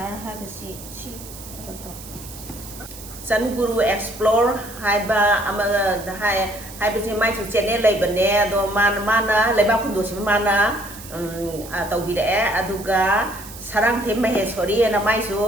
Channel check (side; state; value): right; noise; hiss, 15 dB below the sound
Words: hai bà chị Sun Guru Explore hai ba ama hai bà chị mai chủ channel lấy bên nè do mana lấy bao kundu sih mana tàu bị đẻ aduga sarang thêm mày sorry na mai